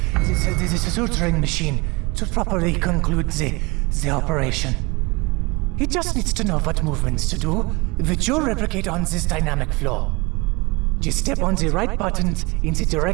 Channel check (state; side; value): quieter; left; 25.7 dB